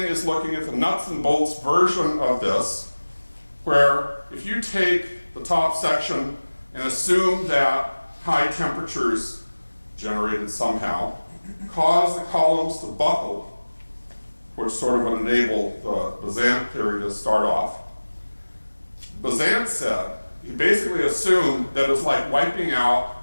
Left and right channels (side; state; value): both; inverted; correlation -1.00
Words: is looking at the nuts and bolts version of this, where if you take the top section and assume that high temperatures generated somehow cause the columns to buckle, which sort of would enable the Bazant theory to start off. Bazant said, he basically assumed that it's like wiping out